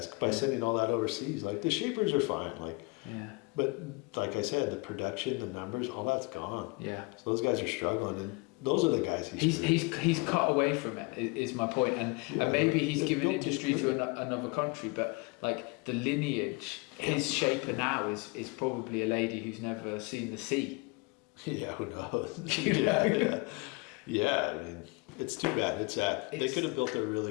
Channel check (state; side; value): quieter; right; 27.2 dB